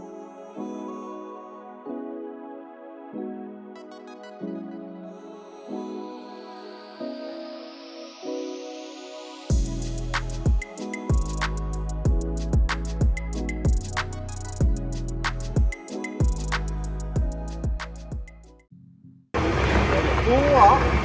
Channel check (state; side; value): identical; both; correlation 1.00